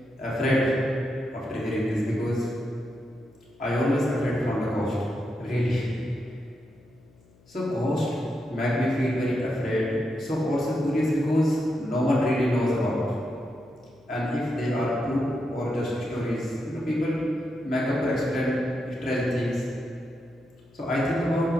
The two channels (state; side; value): noise; left; hum, 29 dB below the sound